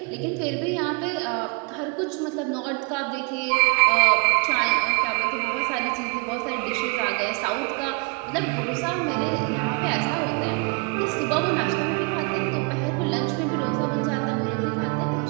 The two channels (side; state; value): left; quieter; 32.6 dB